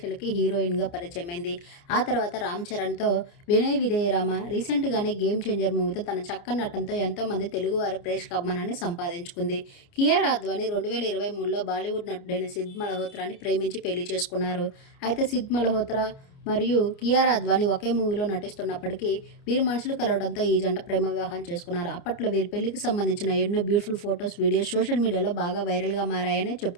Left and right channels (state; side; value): late; right; 29 ms